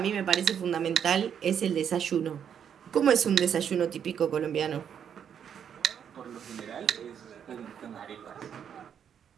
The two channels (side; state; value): left; quieter; 8.3 dB